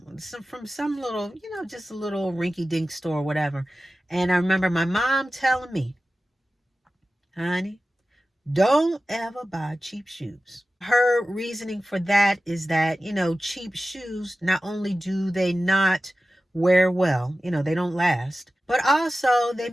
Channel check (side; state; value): both; normal; correlation 0.94